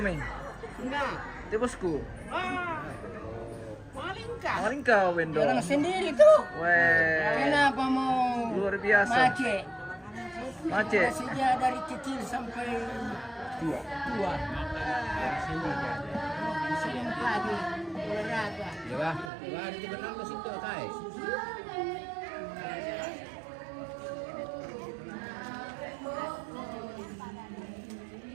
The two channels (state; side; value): drops out; left; at 19.3 s